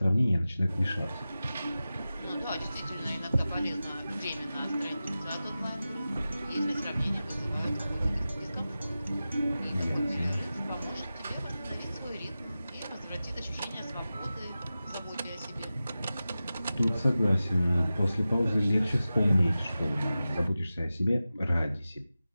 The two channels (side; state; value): both; inverted; correlation -0.94